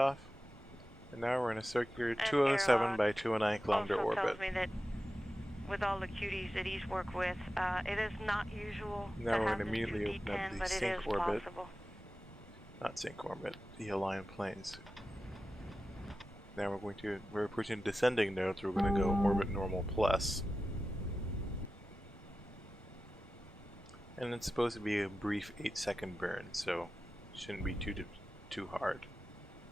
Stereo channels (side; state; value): both; normal; correlation 0.93